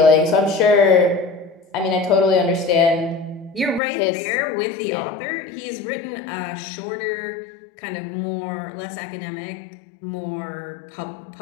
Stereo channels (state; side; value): drops out; right; at 3.8 s